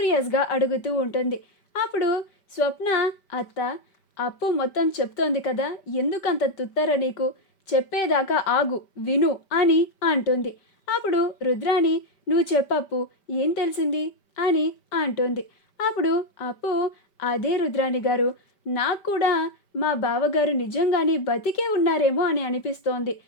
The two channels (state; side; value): late; right; 5.2 ms